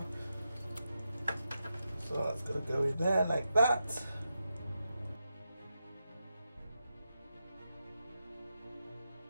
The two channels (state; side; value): inverted; both; correlation -0.88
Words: So that's going to go in there like that.